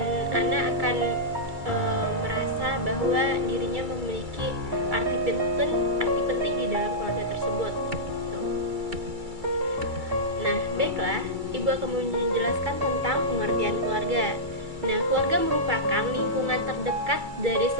anak akan merasa bahwa dirinya memiliki arti penting di dalam keluarga tersebut. Nah, baiklah, Ibu akan menjelaskan tentang pengertian keluarga. Nah, keluarga merupakan lingkungan terdekat dari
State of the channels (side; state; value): left; late; 2.3 ms